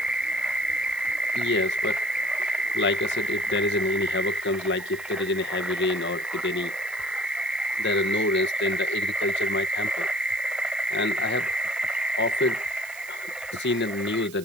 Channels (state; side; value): noise; right; hiss, 18 dB below the sound